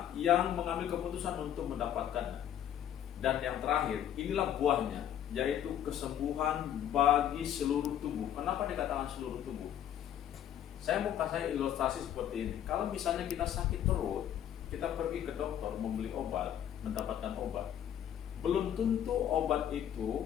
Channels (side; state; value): right; quieter; 10.4 dB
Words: yang mengambil keputusan untuk mendapatkannya. Dan yang terakhir, inilah buahnya, yaitu kesembuhan bagi seluruh tubuh. Kenapa dikatakan seluruh tubuh? Saya mau kasih ilustrasi seperti ini. Kalau misalnya kita sakit perut, kita pergi ke dokter membeli obat, mendapatkan obat. Belum tentu obat